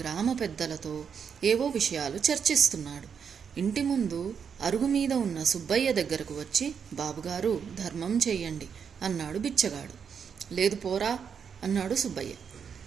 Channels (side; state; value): left; quieter; 6.9 dB